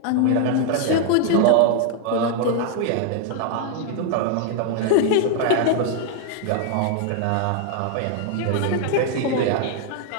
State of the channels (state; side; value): different; both; correlation 0.00